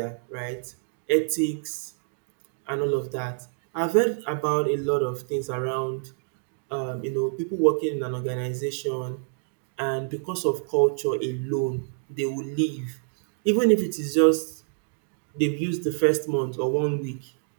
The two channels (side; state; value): left; silent; digital silence